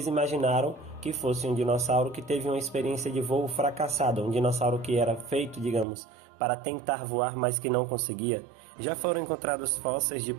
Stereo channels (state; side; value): drops out; left; at 5.9 s